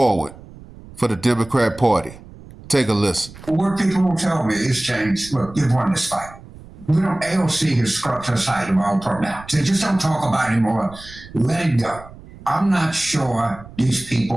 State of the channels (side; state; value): right; noise; rumble, 19 dB below the sound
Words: for the Democrat Party. Take a listen. What people will tell me is, James, look, you've won this fight. AOC has scrubbed us out of all part now. They just don't talk about it anymore. Let it go. I'm not sure these